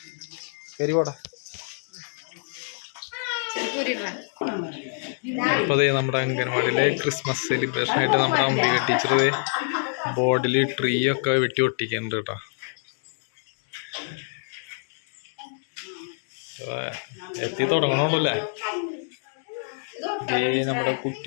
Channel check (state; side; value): silent; right; digital silence